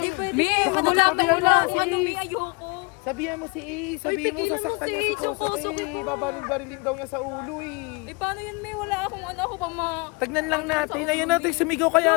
pwede. Baka Wala magsabihan mo si ano, Ace. may ayoko. Sabihan mo si Ace, sabihin mo tigilan mo sasaktan si niya si Ace, yung Kosuke Kosuke. ko. Babaril-barilin daw niya sa ulo eh. Eh, paano yan, May? Wala akong ako pa Tagnan lang natin, ayun natin, sumigaw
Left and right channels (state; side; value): quieter; right; 29.4 dB